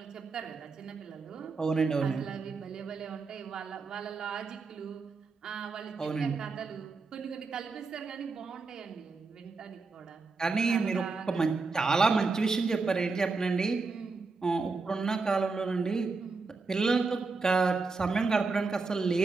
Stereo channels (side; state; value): left; quieter; 4.2 dB